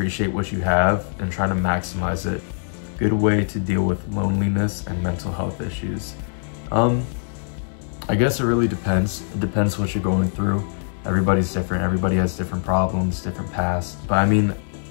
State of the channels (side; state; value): right; silent; digital silence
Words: what you have and try to maximize it good way to deal with loneliness and mental health issues. I guess it really depends. It depends what you're going through. Everybody's different. Everybody has different problems, different pasts. But I mean,